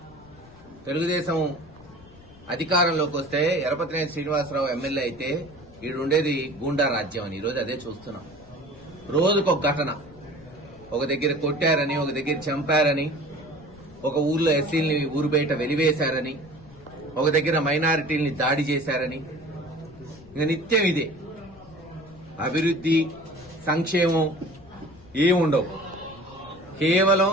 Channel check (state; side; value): noise; left; rumble, 23 dB below the sound